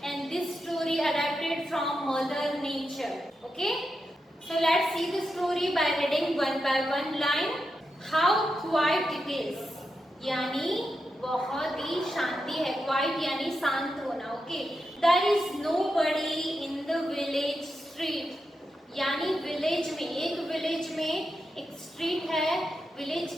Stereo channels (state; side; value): normal; both; correlation 0.87